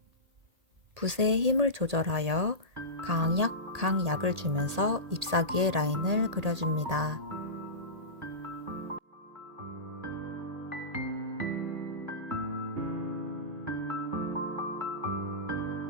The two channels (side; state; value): left; late; 1.8 ms